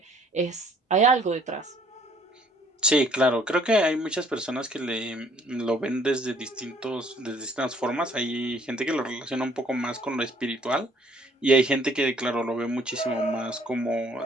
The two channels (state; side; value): normal; both; correlation 0.61